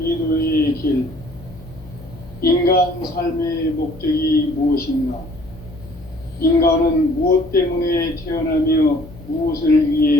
길. 인간 삶의 목적이 무엇인가? 인간은 무엇 때문에 태어나며 무엇을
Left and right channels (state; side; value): noise; left; hum, 19 dB below the sound